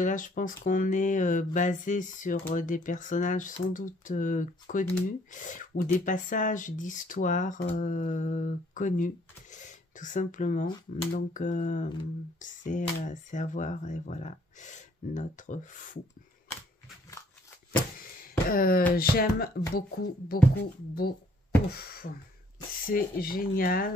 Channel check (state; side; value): normal; both; correlation 0.63